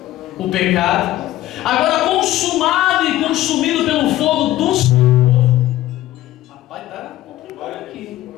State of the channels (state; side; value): quieter; right; 14.8 dB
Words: o pecado, agora consumado e consumido pelo fogo do Senhor. Rapaz, tá complicado aqui.